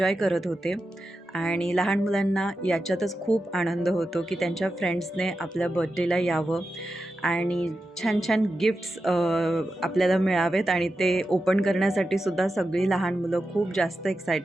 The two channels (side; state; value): both; normal; correlation 0.90